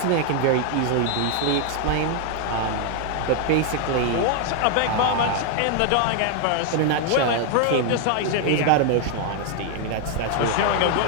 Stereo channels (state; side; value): different; both; correlation 0.00